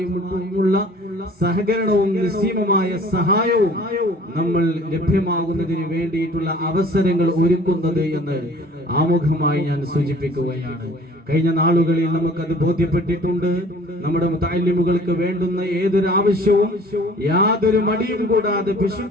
സഹകരണവും നിസ്സീമമായ സഹായവും നമ്മൾ ലഭ്യമാകുന്നതിന് വേണ്ടിയിട്ടുള്ള അവസരങ്ങൾ ഒരുക്കുന്നത് എന്ന് ആമുഖമായി ഞാൻ സൂചിപ്പിക്കുകയാണ്. കഴിഞ്ഞ നാളുകളിൽ നമുക്കത് ബോധ്യപ്പെട്ടിട്ടുണ്ട്. നമ്മുടെ മുതഅല്ലിമുകൾക്ക് വേണ്ടുന്ന ഏതൊരു ആവശ്യവും യാതൊരു മടിയും കൂടാതെ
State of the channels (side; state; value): both; normal; correlation 0.50